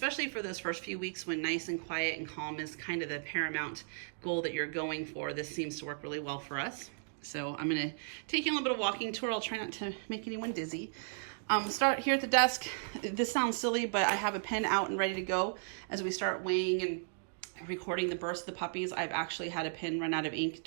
for those first few weeks when nice and quiet and calm is kind of the paramount goal that you're going for, this seems to work really well for us. So I'm going to take you on a little bit of walking tour. I'll try not to make anyone dizzy. Start here at the desk. This sounds silly, but I have a pen out and ready to go as we start weighing and recording the births of the puppies. I've actually had a pen run out of ink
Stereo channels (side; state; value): left; silent; digital silence